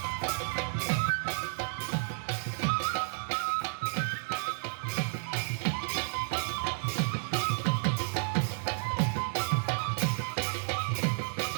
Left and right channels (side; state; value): left; silent; digital silence